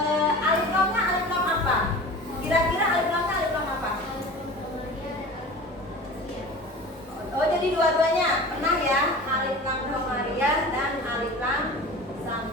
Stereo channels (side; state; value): both; normal; correlation 0.37